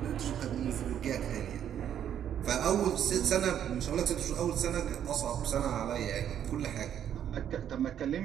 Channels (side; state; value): left; quieter; 9.7 dB